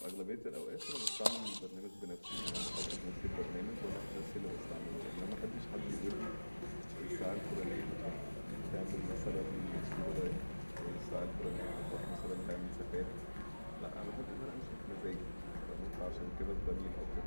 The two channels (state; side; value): inverted; both; correlation -1.00